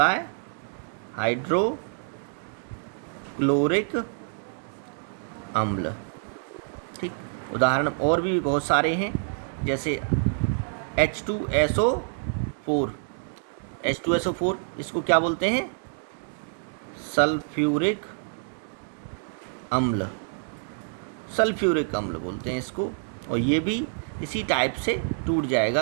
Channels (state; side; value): silent; left; digital silence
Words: है, हाइड्रोक्लोरिक अम्ल। ठीक, उदाहरण और भी बहुत सारे हैं, जैसे H2SO4। H2SO4 इसको क्या बोलते हैं? सल्फ्यूरिक अम्ल, सल्फ्यूरिक अम्ल बोलते हैं इसको। और ये भी इसी टाइप से टूट